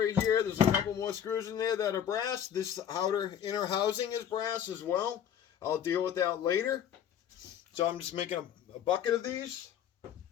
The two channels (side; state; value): right; quieter; 9.3 dB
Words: here, there's a couple more screws in there that are brass. This outer inner housing is brass as well. I'll deal with that later. So I'm just making a bucket of these.